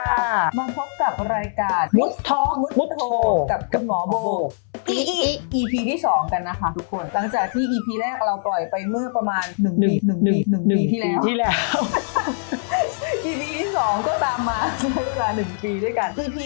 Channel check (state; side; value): silent; right; 64 dB below the other